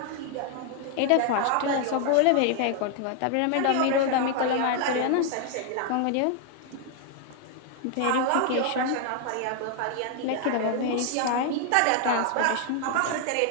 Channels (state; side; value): different; both; correlation 0.00